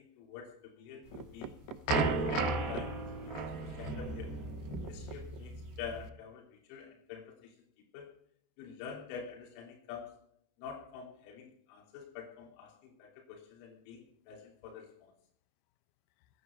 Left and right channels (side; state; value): right; late; 27 ms